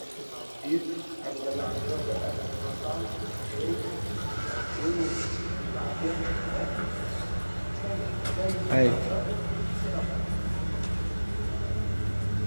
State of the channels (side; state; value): both; inverted; correlation -1.00